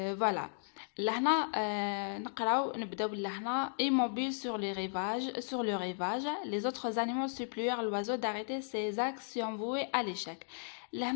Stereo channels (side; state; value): right; silent; digital silence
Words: فوالا لهنا نبداو لهنا immobile sur le rivage les autres animaux supplièrent l'oiseau d'arrêter ses actions vouées à l'échec.